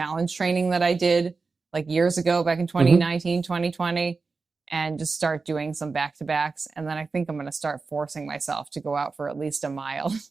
training that I did like years ago, back in 2019, 2020, and just start doing some back-to-backs. And then I think I'm going to start forcing myself to go out for at least a mile.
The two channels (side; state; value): left; quieter; 4.3 dB